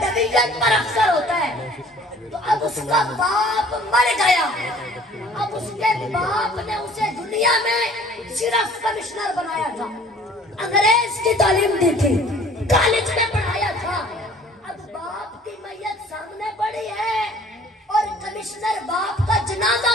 डिवीजन पर अफसर होता है। तो अब उसका बाप मर गया, अब उसके बाप ने उसे दुनिया में सिर्फ कमिश्नर बनाया था, अंग्रेज की तालीम दी थी, कॉलेज में पढ़ाया था। अब बाप की मैयत सामने पड़ी है और कमिश्नर बाप का जनाजा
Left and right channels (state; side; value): normal; both; correlation 0.53